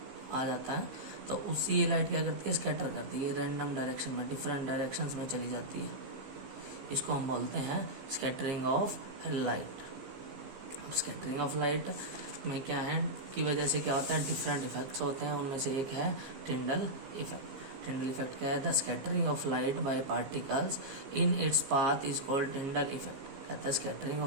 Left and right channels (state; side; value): late; left; 15 ms